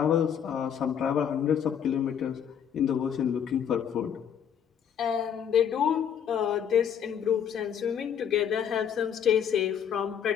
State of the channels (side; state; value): right; quieter; 8.4 dB